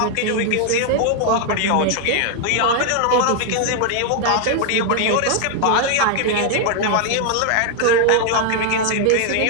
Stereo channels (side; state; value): both; different; correlation 0.00